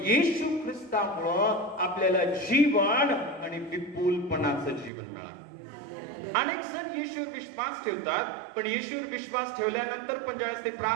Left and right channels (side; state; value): left; drops out; at 4.9 s